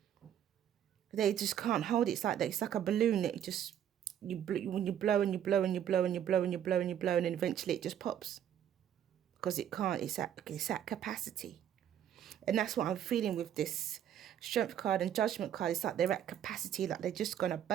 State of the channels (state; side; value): quieter; left; 10.1 dB